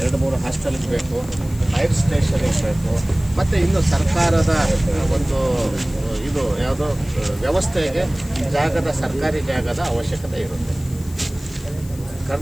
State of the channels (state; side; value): noise; left; hiss, 20 dB below the sound